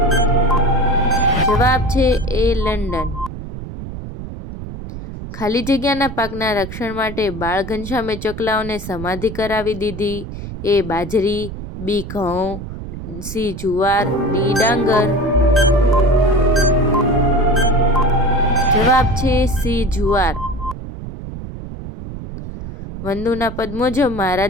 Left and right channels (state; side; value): noise; right; rumble, 10 dB below the sound